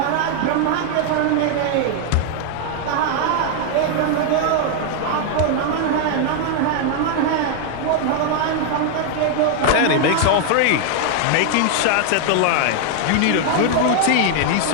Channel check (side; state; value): both; different; correlation 0.00